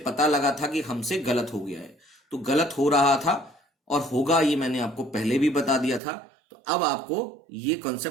पता लगा था कि हमसे गलत हो गया है, तो गलत हो रहा था और होगा ये मैंने आपको पहले भी बता दिया था, तो अब आपको ये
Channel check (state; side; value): drops out; left; at 6.0 s